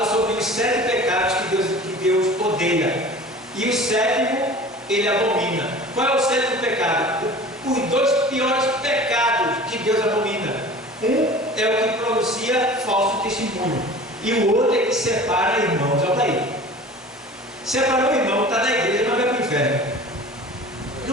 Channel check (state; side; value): normal; both; correlation 0.41